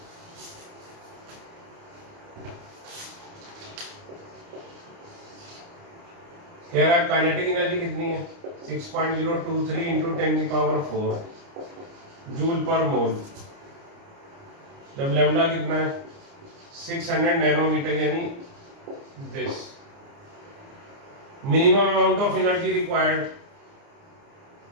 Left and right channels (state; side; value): late; left; 29 ms